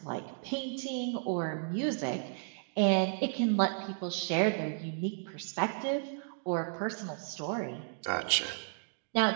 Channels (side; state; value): left; silent; digital silence